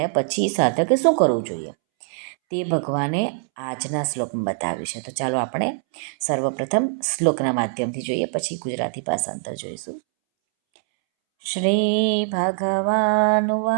પછી સાધકે શું કરવું જોઈએ તે ભગવાને આજના શ્લોકમાં બતાવ્યું છે. તો ચાલો આપણે સર્વપ્રથમ શ્લોકના માધ્યમથી જોઈએ, પછી ગુજરાતી ભાષાંતર જોઈશું. શ્રી ભગવાન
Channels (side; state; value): left; silent; 64 dB below the other